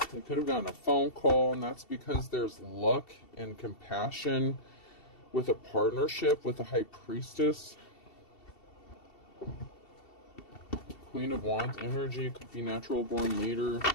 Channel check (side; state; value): right; late; 2.7 ms